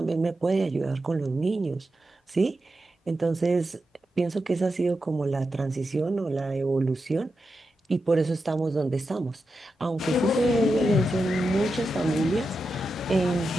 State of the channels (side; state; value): both; normal; correlation 0.89